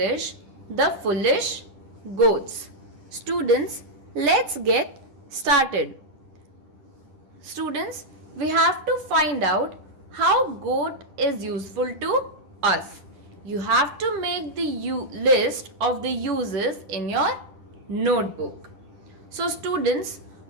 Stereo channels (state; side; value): late; left; 10 ms